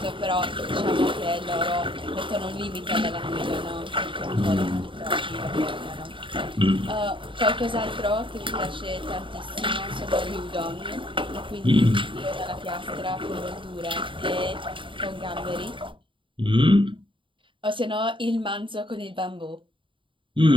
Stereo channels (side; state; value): left; late; 0.25 ms